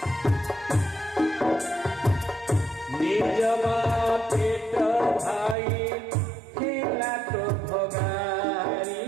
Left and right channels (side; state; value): left; drops out; at 5.6 s